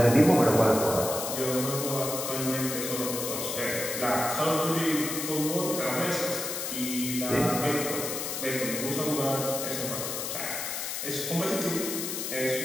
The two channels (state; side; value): noise; left; hiss, 4 dB below the sound